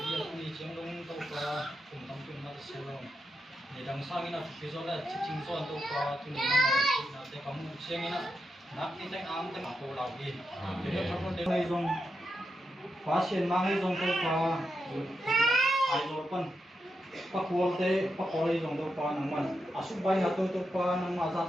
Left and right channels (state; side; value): normal; both; correlation 0.86